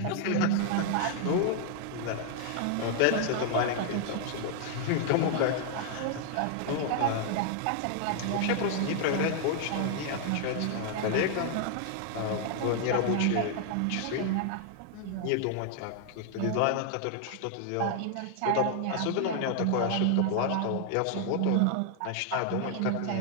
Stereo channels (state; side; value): different; both; correlation 0.00